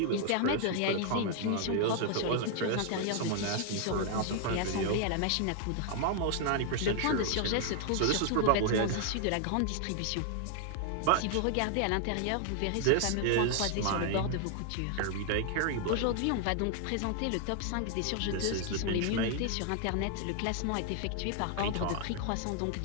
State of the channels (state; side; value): different; both; correlation 0.00